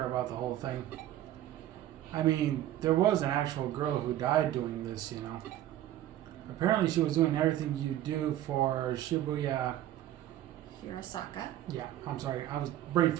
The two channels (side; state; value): left; quieter; 13.0 dB